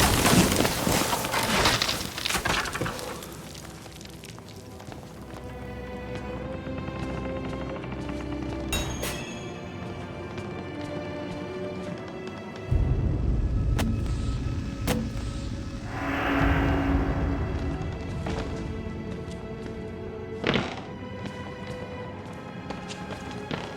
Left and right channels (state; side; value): identical; both; correlation 1.00